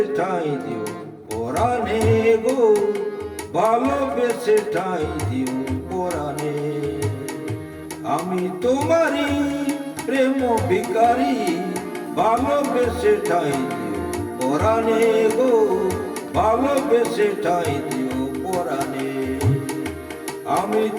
ঠাঁই দিও পরাণে গো, ভালোবেসে ঠাঁই দিও পরাণে। আমি তোমারি প্রেম ভিখারি, ভালোবেসে ঠাঁই দিও পরাণে গো, ভালোবেসে ঠাঁই দিও পরাণে। আমি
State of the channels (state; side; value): identical; both; correlation 1.00